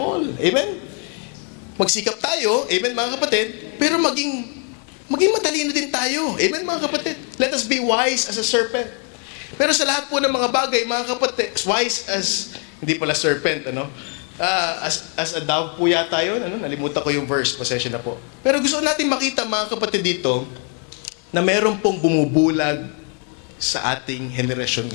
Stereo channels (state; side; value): quieter; right; 39.6 dB